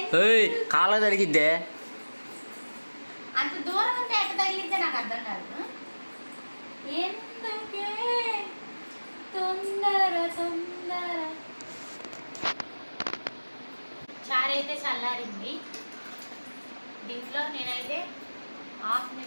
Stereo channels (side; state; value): both; inverted; correlation -1.00